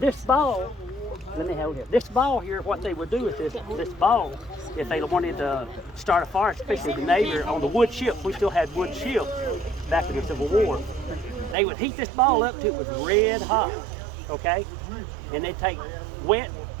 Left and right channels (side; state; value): left; drops out; at 11.6 s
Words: ball, let me hold it. This ball here, what they would do with this ball, if they wanted to start a fire, especially the Navy on the wood ships, we still had wood ships back in the Civil War. They would heat this ball up till it was red hot, okay? And they'd take wet